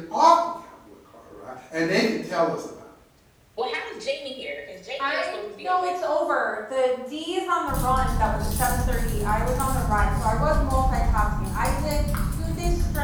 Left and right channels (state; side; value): identical; both; correlation 1.00